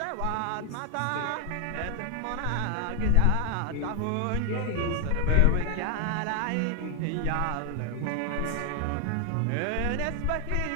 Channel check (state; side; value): different; both; correlation 0.00